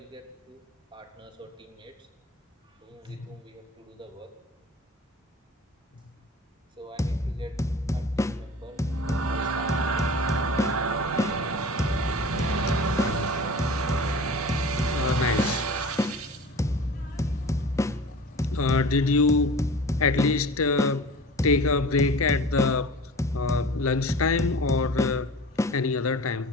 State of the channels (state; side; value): normal; both; correlation 0.39